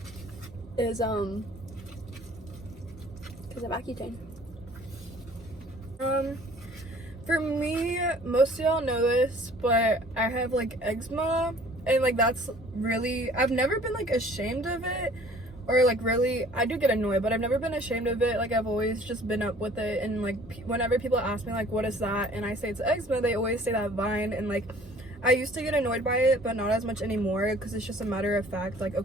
is because of Accutane. For me, most of y'all know this, but I have like eczema, and like that's really, I've never been like ashamed of it, or like really, I do get annoyed, but I've never been ashamed of it. Like, I've always just been up with it, and like whenever people ask me like what is that, and I say it's eczema, they always say that vine, and like I used to get annoyed by it, but not as much anymore, because it's just a matter of fact, like,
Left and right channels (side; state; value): both; normal; correlation 0.52